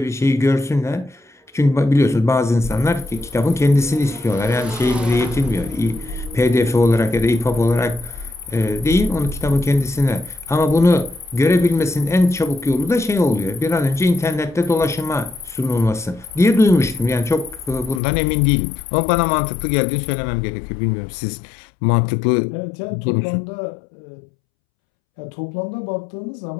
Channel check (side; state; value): right; drops out; at 18.0 s